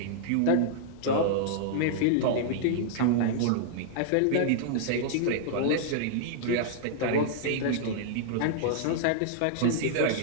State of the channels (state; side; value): different; both; correlation -0.01